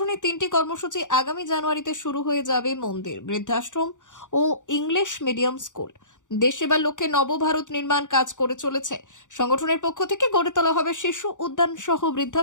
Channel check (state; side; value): late; right; 0.86 ms